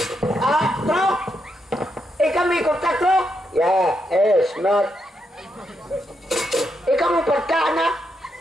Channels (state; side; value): normal; both; correlation 0.81